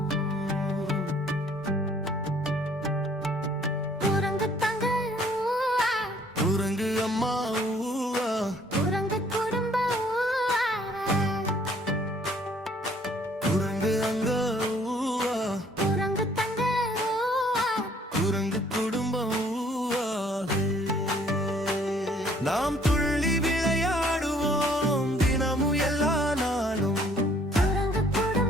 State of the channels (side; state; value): both; normal; correlation 0.60